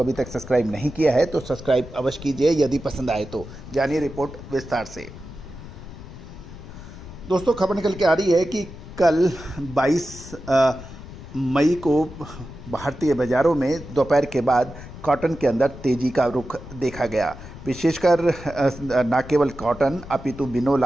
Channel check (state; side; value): noise; left; rumble, 14 dB below the sound